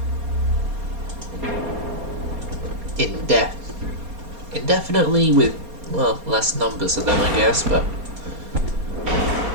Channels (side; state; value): left; late; 4.3 ms